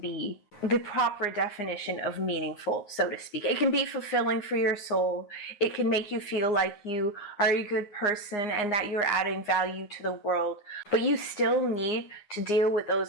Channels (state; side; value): late; right; 9.7 ms